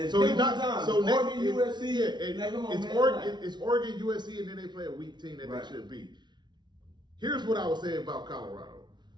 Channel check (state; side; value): late; left; 0.21 ms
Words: So he's pick not. one time. So next, Oregon, USC. yeah, and Like, come on, it's man. Oregon, it's Oregon, USC, and then they play a weak team that Right. they should beat. Here's what I would say about Colorado.